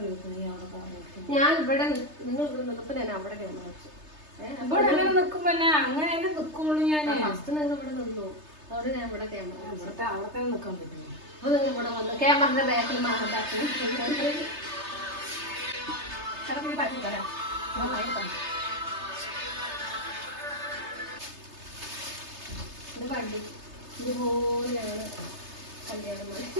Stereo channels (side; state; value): left; late; 3.3 ms